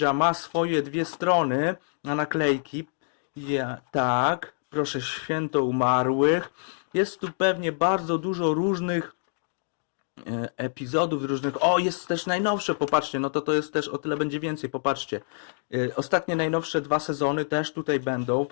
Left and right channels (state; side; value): silent; right; digital silence